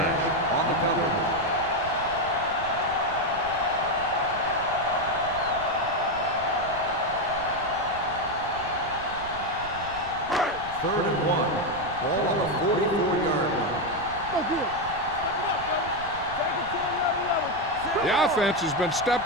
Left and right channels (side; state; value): right; noise; rumble, 15 dB below the sound